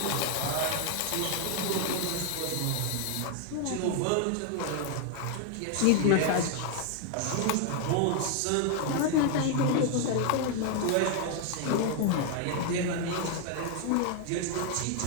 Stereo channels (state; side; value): different; both; correlation 0.00